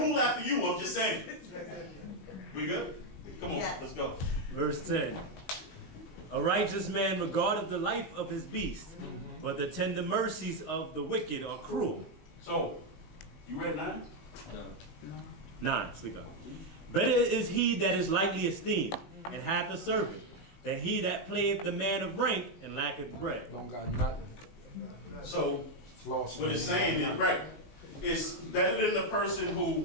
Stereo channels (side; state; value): right; late; 19 ms